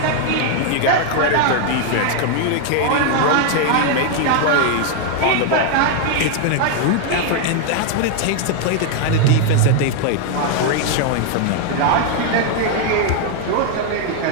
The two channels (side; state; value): both; different; correlation 0.00